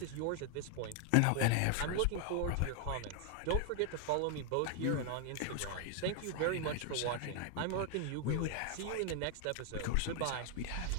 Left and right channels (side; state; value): both; different; correlation 0.01